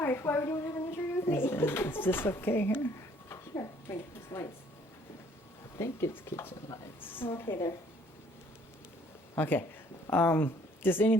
Why would you want to have an interview with me? Is this okay here? Sure. Bring those lights. I think it's kitchen lights. Okay, there. Okay. Just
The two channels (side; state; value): both; normal; correlation 0.60